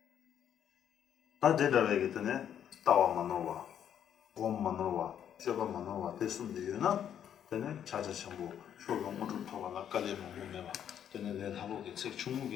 다 대답하기 전에 따와 만나와, 곰 만나와, 셔바 만나와 됐으면 되나? 전에 자자 전부 쇼롱 모두 토가나 깔리면 몸에봐. 전에 내 하고게 책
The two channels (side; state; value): right; quieter; 9.4 dB